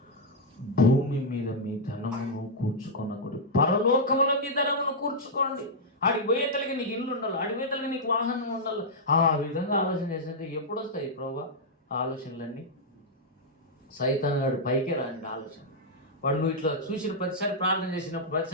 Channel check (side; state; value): both; normal; correlation -0.06